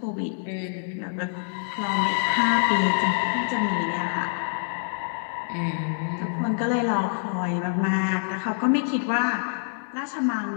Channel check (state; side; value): silent; right; digital silence